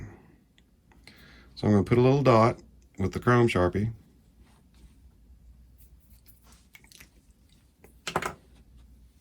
So I'm going to put a little dot with the chrome Sharpie.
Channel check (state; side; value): identical; both; correlation 1.00